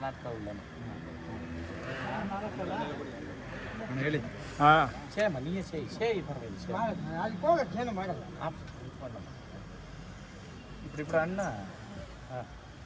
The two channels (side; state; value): both; identical; correlation 1.00